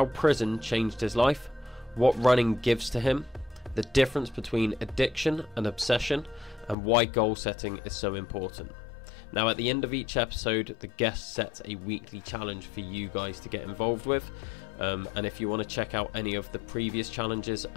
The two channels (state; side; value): drops out; right; at 6.8 s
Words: prison changed his life, what running gives to him, the difference between addiction and obsession, and why goal setting is so important. Now, at the end of each episode, the guest sets a weekly challenge for you guys to get involved with. And if you want to check out any of the previous challenges